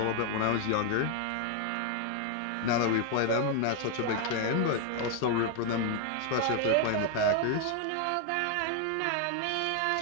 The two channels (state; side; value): different; both; correlation 0.00